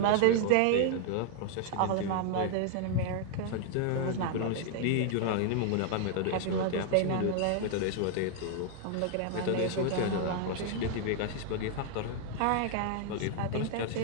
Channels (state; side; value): different; both; correlation 0.00